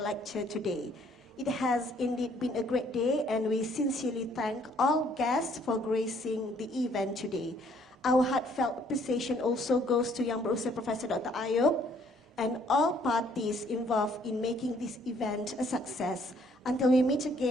Lecture today. It has indeed been a great day, and we sincerely thank all guests for gracing the event today. Our heartfelt appreciation also goes to Yang Berusaha Professor Dr. Ayub and all parties involved in making this event a success. Until we meet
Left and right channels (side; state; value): both; normal; correlation 0.63